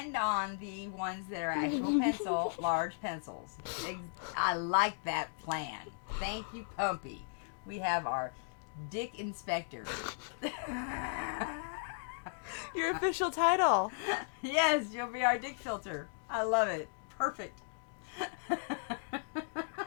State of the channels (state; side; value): silent; right; digital silence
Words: on the ones that are actual large pencils. I like that plan. Thank you, Pumpy. We have our dick inspector. Your official title. Yes, you'll be our dick filter. I love it. Perfect.